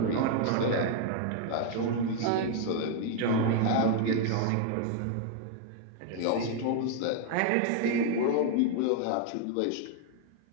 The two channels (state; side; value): different; both; correlation 0.00